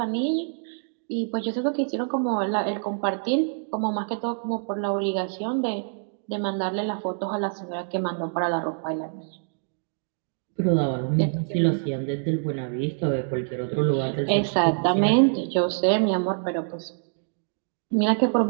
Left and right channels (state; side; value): silent; left; digital silence